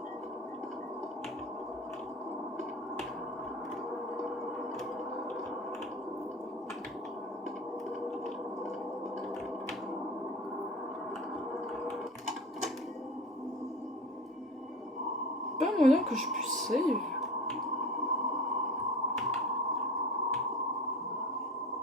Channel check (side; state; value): both; normal; correlation 0.36